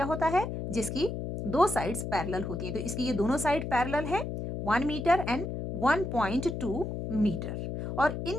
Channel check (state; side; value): noise; left; hum, 5 dB below the sound